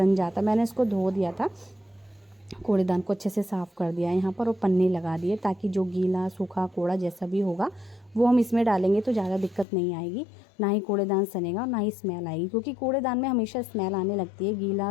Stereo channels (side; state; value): right; drops out; at 9.7 s